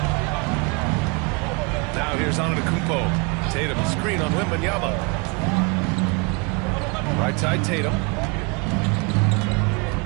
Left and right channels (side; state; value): left; quieter; 29.9 dB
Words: Now here's Antetokounmpo. Tatum screen on Wembanyama. Right side Tatum.